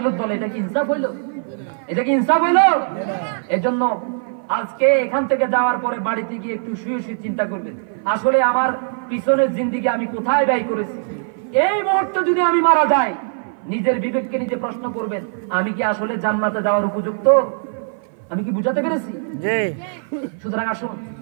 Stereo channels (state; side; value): silent; left; 56 dB below the other